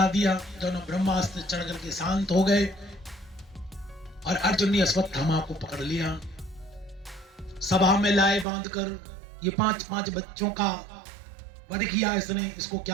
दिया। दोनों ब्रह्मास्त्र चढ़ करके शांत हो गए और अर्जुन ने अश्वत्थामा को पकड़ लिया। सभा में लाए बांधकर ये 5 बच्चों का वध किया इसने, इसको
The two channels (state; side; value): drops out; left; at 8.5 s